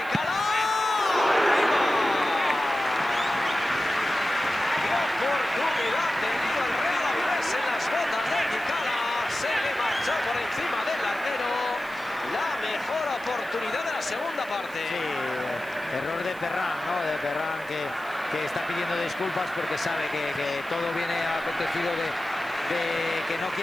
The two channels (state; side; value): noise; left; hiss, 24 dB below the sound